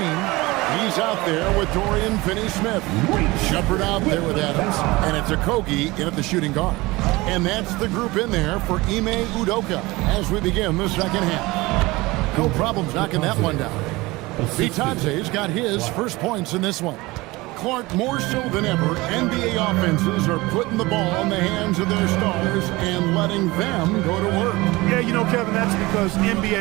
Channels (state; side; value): quieter; left; 21.5 dB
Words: He's out there with Dorian Finney-Smith. Shepard out there with Adams. And it's Okogie in at the shooting guard. And that's the group in there for Ime Udoka as we begin the second half. No problems knocking that one down. Vitante's got his first points in this one. Clark, more so than ever, NBA offenses are putting the ball in the hands of their stars and letting them go to work. Yeah, you know, Kevin, that's because